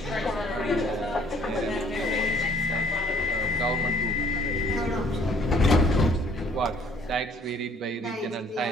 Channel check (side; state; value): both; normal; correlation 0.59